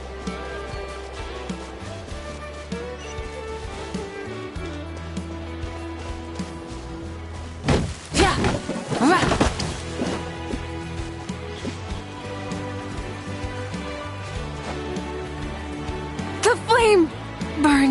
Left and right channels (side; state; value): both; identical; correlation 1.00